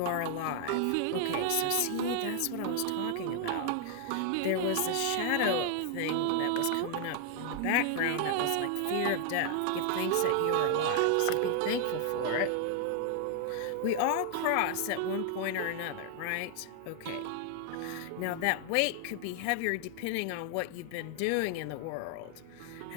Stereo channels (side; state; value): both; different; correlation 0.00